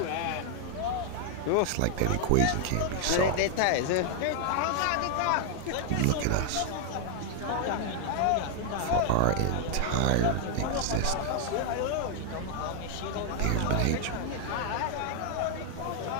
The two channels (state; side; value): different; both; correlation 0.00